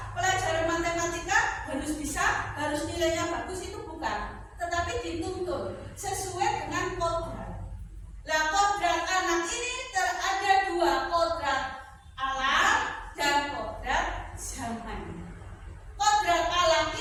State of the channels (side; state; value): both; identical; correlation 1.00